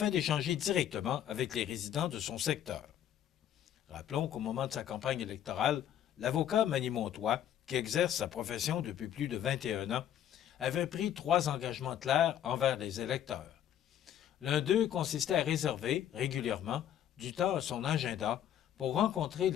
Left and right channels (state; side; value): quieter; right; 10.5 dB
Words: d'échanger directement avec les résidents de son secteur. Rappelons qu'au moment de sa campagne électorale, l'avocat Manny Montois, qui exerce sa profession depuis plus de 21 ans, avait pris 3 engagements clairs envers les électeurs. L'un d'eux consistait à réserver régulièrement du temps à son agenda pour rencontrer